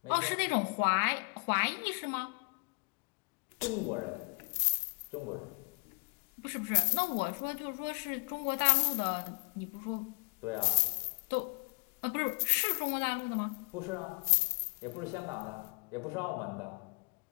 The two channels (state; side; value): quieter; right; 34.9 dB